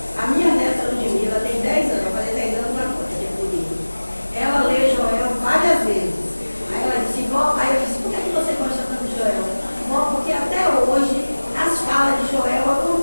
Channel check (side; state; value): both; inverted; correlation -1.00